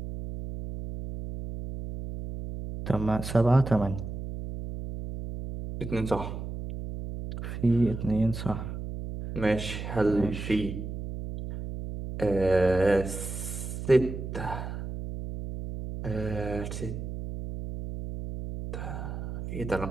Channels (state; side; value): noise; right; hum, 7 dB below the sound